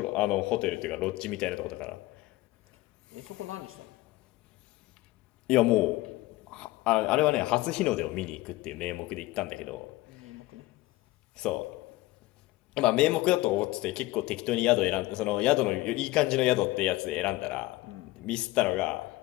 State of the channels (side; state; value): right; quieter; 18.7 dB